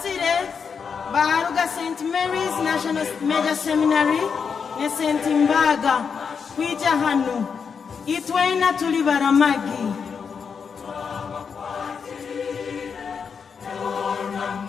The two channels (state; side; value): quieter; right; 6.2 dB